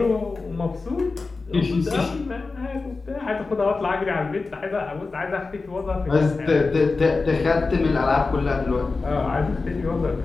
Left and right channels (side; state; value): right; quieter; 3.9 dB